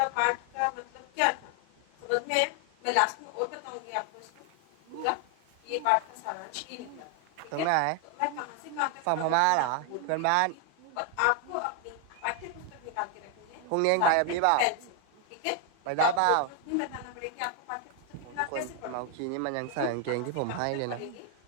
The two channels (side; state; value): both; different; correlation 0.00